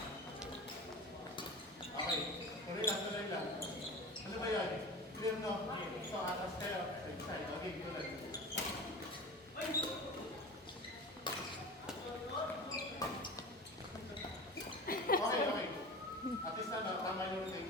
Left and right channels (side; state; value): both; normal; correlation 0.33